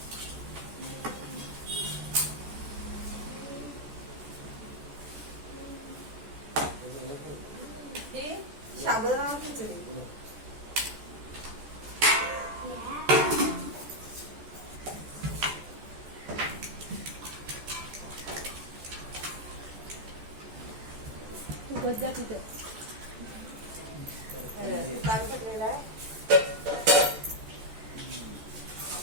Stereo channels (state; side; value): late; left; 14 ms